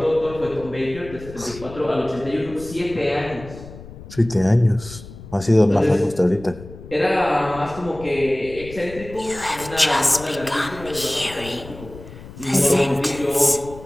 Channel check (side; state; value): left; noise; rumble, 16 dB below the sound